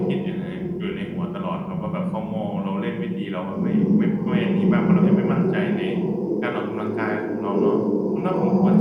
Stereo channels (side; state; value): both; identical; correlation 1.00